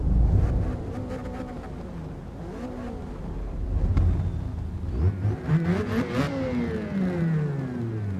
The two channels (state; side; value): identical; both; correlation 1.00